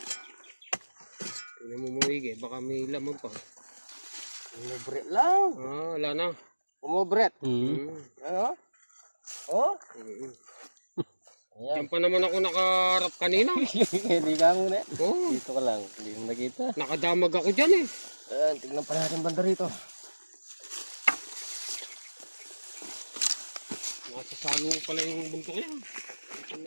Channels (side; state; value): both; inverted; correlation -1.00